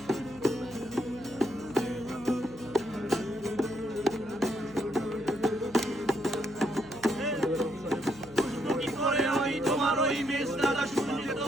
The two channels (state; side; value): noise; left; hum, 22 dB below the sound